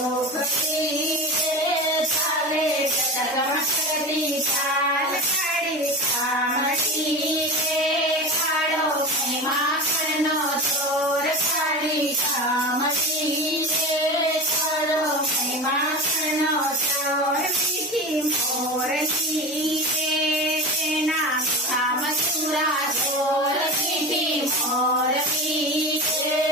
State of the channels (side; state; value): both; normal; correlation 0.26